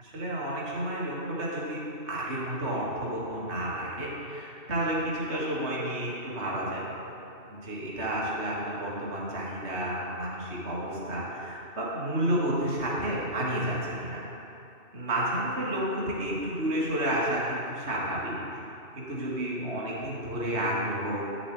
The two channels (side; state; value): left; late; 2.7 ms